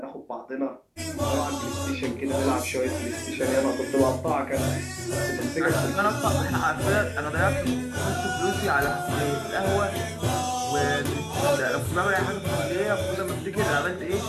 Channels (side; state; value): both; identical; correlation 1.00